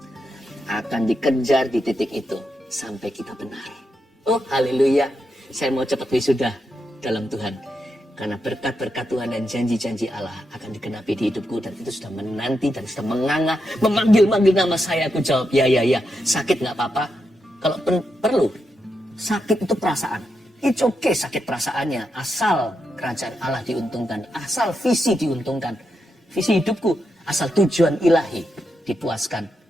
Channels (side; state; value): both; normal; correlation 0.84